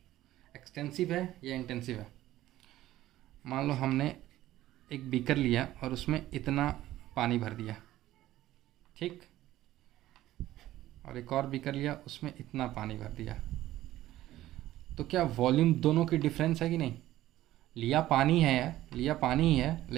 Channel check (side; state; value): left; quieter; 14.8 dB